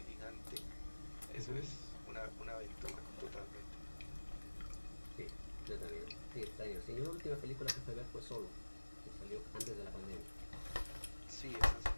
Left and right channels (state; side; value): inverted; both; correlation -1.00